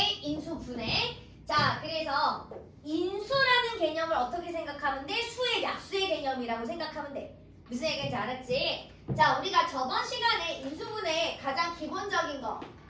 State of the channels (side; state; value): both; identical; correlation 1.00